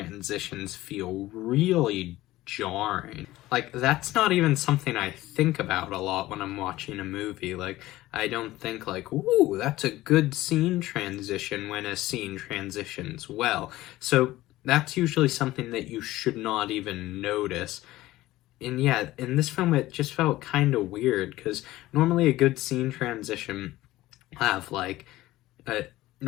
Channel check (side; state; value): right; quieter; 16.8 dB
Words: feel really jarring. Like, that's not even something I think about a lot when I'm watching a movie. Like, I don't think like, ooh, that's a good scene transition when a scene transitions well. So that's usually something that you should not even notice. And yeah, in this film it just felt kind of weird, because normally a good scene transition have like